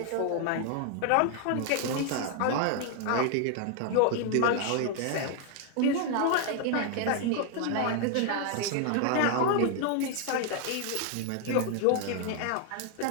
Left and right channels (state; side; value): different; both; correlation 0.00